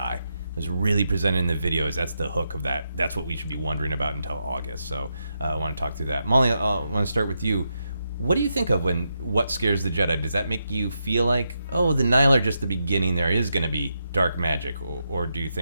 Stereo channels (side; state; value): both; inverted; correlation -0.84